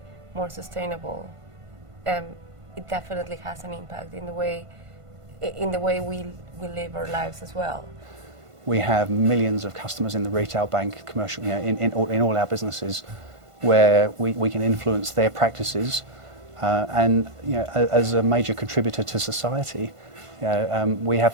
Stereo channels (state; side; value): late; left; 1.5 ms